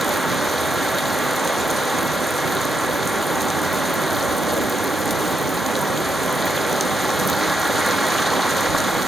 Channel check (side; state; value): both; normal; correlation 0.82